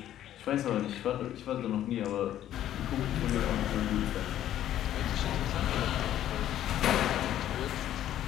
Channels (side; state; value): right; quieter; 11.9 dB